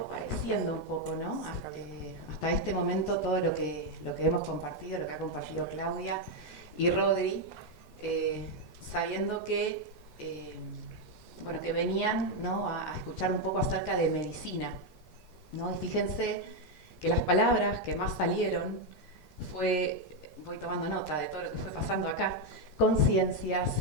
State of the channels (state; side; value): normal; both; correlation 0.03